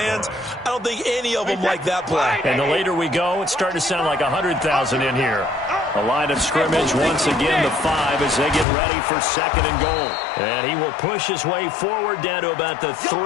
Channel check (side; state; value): right; drops out; at 8.7 s